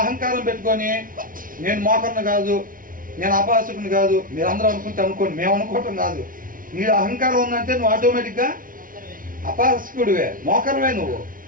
అహంకారం పెట్టుకొని నేను మోకర్ని కాదు, నేను అపహాసకుని కాదు, మీరు అందరూ అనుకుంటే అనుకోండి, మేము అనుకోవటం కాదు. నీ అహంకారం ఉందంటే నువ్వు ఆటోమేటిక్గా అపహాసకుడివే, మోకరమే నువ్వు.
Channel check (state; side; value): late; left; 0.40 ms